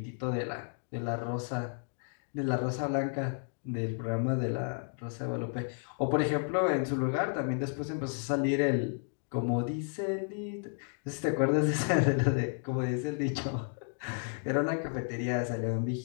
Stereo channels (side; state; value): right; silent; 56 dB below the other